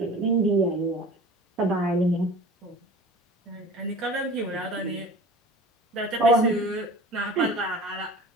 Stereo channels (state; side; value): normal; both; correlation 0.40